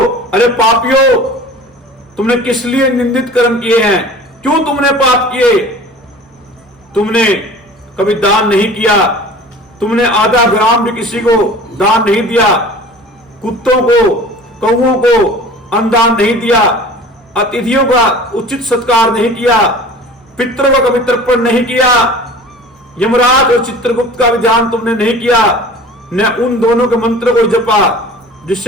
अरे पापियों, तुमने किस लिए निंदित कर्म किए हैं? क्यों तुमने पाप किए? तुमने कभी दान नहीं किया, तुमने आधा ग्राम भी किसी को दान नहीं दिया, कुत्तों को कौओं को अन्नदान नहीं दिया, अतिथियों का उचित सत्कार नहीं किया, पितरों का कभी तर्पण नहीं किया, यमराज और चित्रगुप्त का भी ध्यान तुमने नहीं किया, न उन दोनों के मंत्र को जपा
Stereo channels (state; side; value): normal; both; correlation 0.42